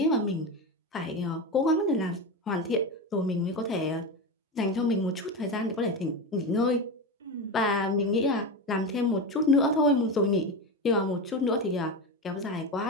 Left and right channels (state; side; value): normal; both; correlation 0.19